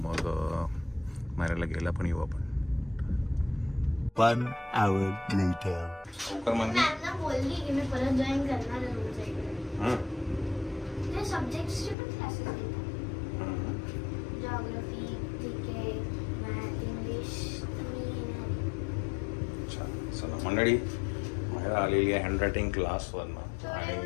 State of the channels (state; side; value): drops out; right; at 12.0 s